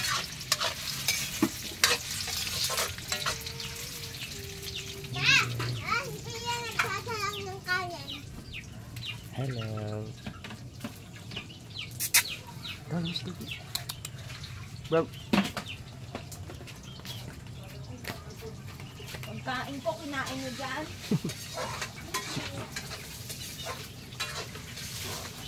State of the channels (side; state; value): both; identical; correlation 1.00